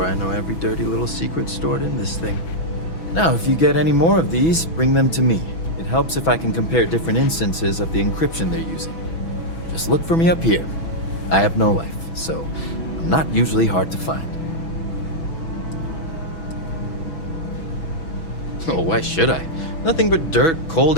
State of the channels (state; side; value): late; right; 6.1 ms